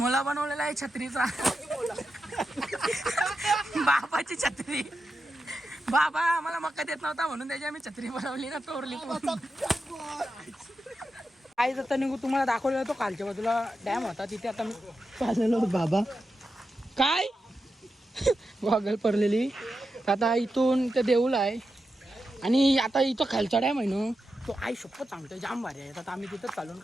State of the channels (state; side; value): normal; both; correlation 0.89